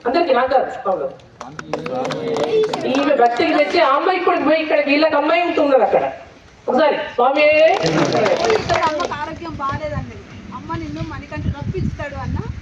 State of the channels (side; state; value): both; identical; correlation 1.00